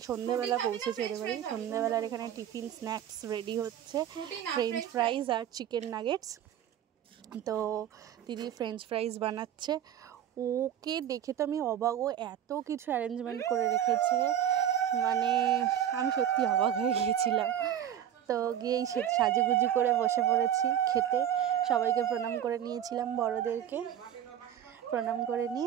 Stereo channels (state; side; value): quieter; left; 10.2 dB